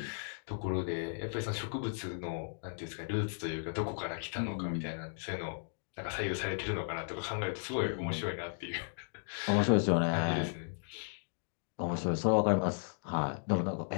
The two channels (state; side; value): silent; right; digital silence